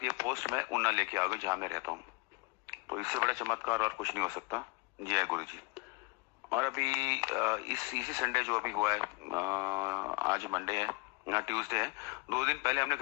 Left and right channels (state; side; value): quieter; right; 28.3 dB